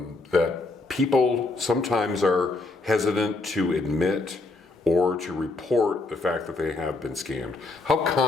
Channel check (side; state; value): right; quieter; 3.3 dB